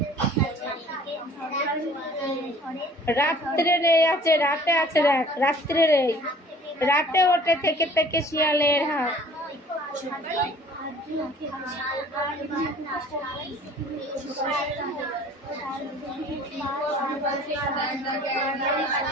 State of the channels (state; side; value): normal; both; correlation 0.50